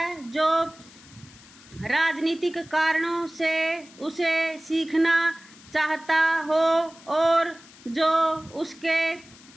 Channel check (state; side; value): noise; left; hiss, 22 dB below the sound